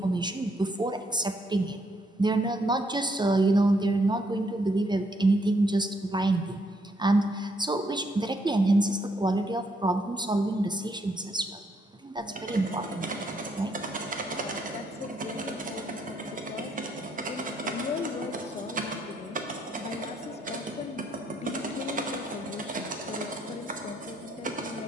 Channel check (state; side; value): normal; both; correlation 0.72